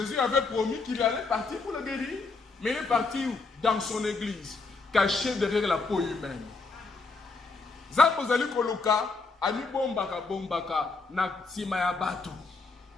avait promis qu'il allait partir pour le guérir. Mais il est parti où? Dans son église, caché derrière la peau humaine. Zapozali Koluka, Ami bombaka bombaka na simaya batu.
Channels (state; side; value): quieter; right; 4.0 dB